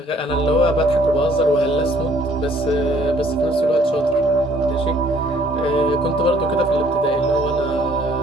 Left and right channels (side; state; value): both; normal; correlation 0.60